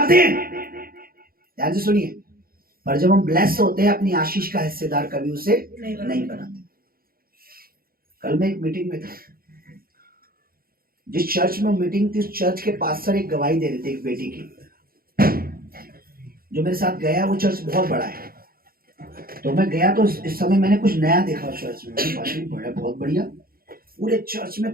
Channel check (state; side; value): late; left; 0.43 ms